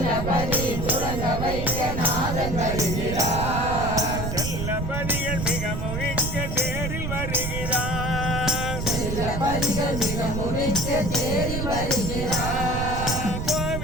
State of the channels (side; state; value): right; noise; rumble, 3 dB below the sound